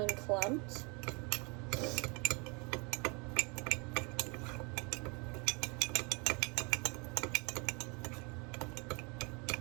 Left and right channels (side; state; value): left; quieter; 30.8 dB